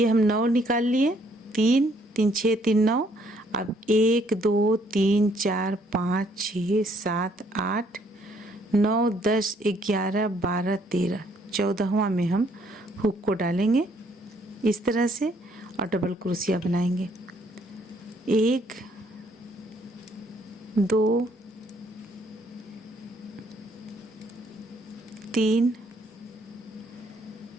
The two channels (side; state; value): both; normal; correlation 0.67